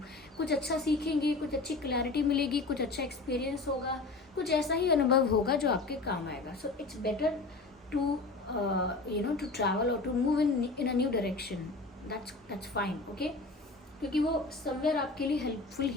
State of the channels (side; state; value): right; quieter; 3.6 dB